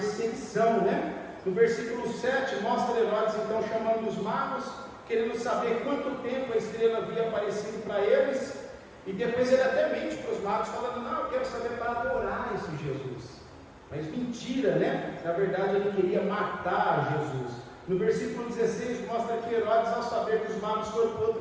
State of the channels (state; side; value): identical; both; correlation 1.00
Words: né? No versículo 7, mostra Herodes então chamando os magos, querendo saber quanto tempo a estrela havia aparecido para eles, e depois ele até mente para os magos, falando: não, eu quero saber para adorar esse Jesus. Mas mentira, né? Na verdade ele queria matar Jesus. No versículo 16 mostra que Herodes, ao saber que os magos foram para